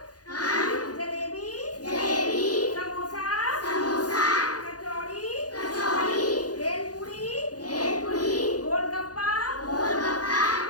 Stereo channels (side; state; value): right; late; 0.68 ms